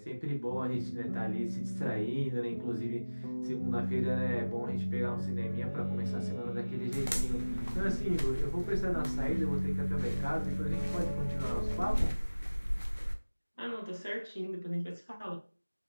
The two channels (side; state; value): both; inverted; correlation -1.00